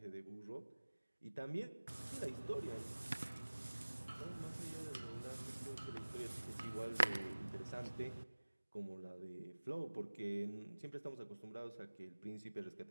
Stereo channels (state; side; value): inverted; both; correlation -1.00